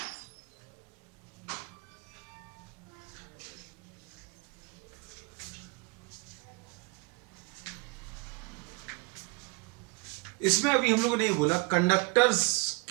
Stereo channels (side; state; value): left; quieter; 28.0 dB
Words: इसमें अभी हम लोगों ने ये बोला, कंडक्टर्स